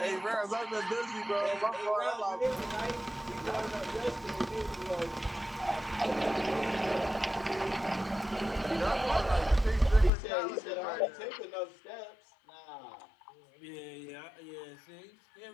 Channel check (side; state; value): right; drops out; at 10.1 s